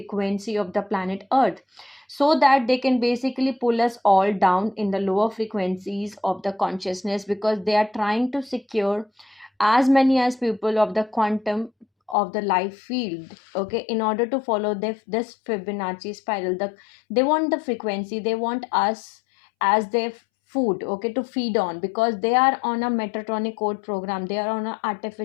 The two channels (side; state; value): right; drops out; at 12.2 s